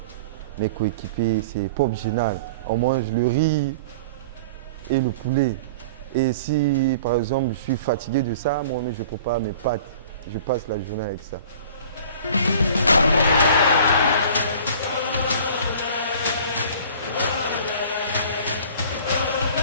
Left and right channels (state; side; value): inverted; both; correlation -0.45